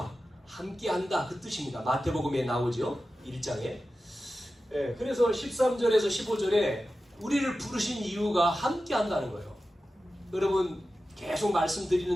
함께한다 그 뜻입니다. 마태복음에 나오죠. 1장에. 그래서 13절에서 15절에 우리를 부르신 이유가 함께한다는 거예요. 여러분 계속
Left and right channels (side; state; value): both; normal; correlation 0.93